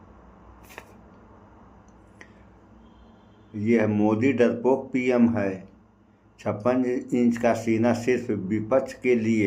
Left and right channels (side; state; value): both; identical; correlation 1.00